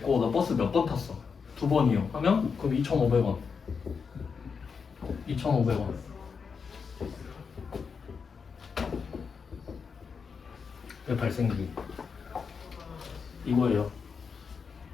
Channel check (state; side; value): quieter; right; 5.7 dB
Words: 너 버스 몇 번 탔어? 2번이요 하면 그럼 2,500원. 2,500원. 왜 발생주의? 이거예요.